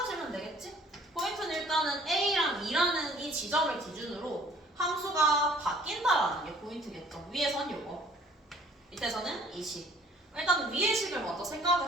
되겠지? 포인트는 일단은 a랑 2라는 이 지점을 기준으로 함수가 바뀐다라는 게 포인트겠죠. 위에선 요거, 밑에서는 이 식. 일단 위의 식을 먼저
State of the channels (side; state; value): both; normal; correlation 0.55